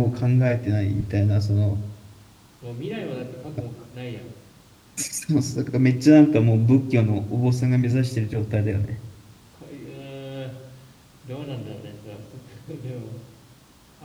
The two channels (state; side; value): identical; both; correlation 1.00